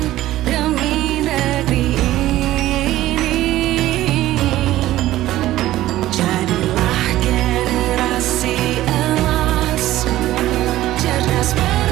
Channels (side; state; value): left; quieter; 15.0 dB